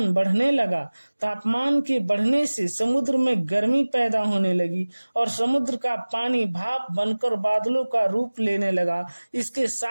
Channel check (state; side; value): inverted; both; correlation -1.00